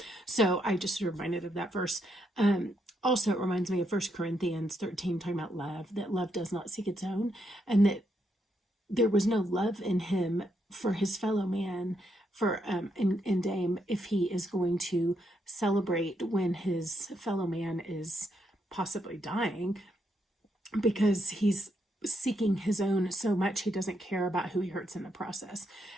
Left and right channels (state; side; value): normal; both; correlation 0.78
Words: So I just reminded of that verse. Also, it reminds me of 1 Corinthians 13, talking about love, that love does not seek its own, and that there was no love in him for his fellow man, for in Dame, if he is going to celebrate when his fellow man is possibly dying, because he's seeking his own so much he doesn't care about who he hurts in the process.